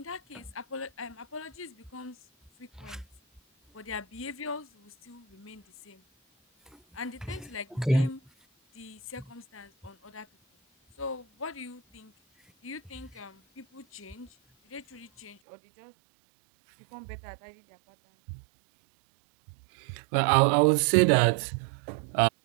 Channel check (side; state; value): left; drops out; at 15.4 s